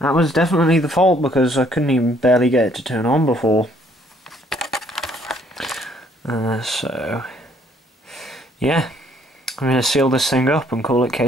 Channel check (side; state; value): both; normal; correlation 0.64